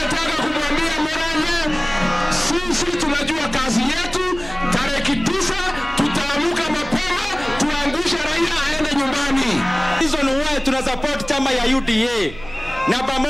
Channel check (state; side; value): noise; right; hum, 16 dB below the sound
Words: kumwambia Murang'a, sisi tunajua kazi yetu, tarehe 9 tutaamuka mapema, tuangushe Raila aende nyumbani. Reason why tuna support chama ya UDA na